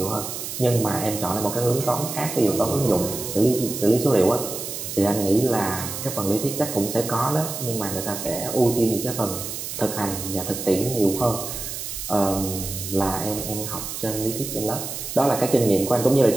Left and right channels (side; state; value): right; noise; hiss, 7 dB below the sound